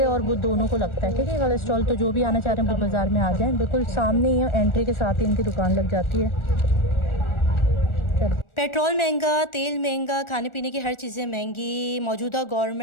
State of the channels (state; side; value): late; right; 1.4 ms